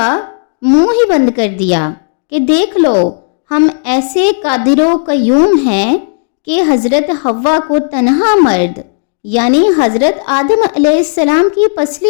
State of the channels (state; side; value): silent; right; digital silence